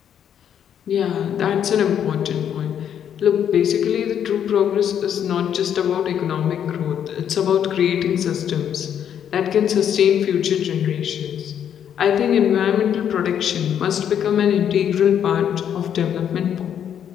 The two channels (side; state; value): right; quieter; 9.1 dB